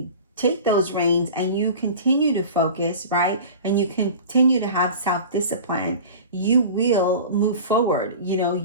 take those reins and you continue to focus, right, and you continue to have self-discipline, you will move forward.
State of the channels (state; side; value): inverted; both; correlation -0.37